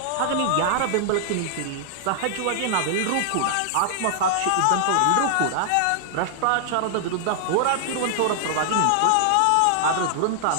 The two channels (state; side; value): different; both; correlation -0.01